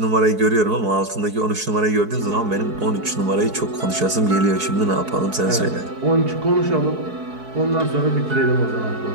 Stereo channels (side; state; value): left; late; 4.6 ms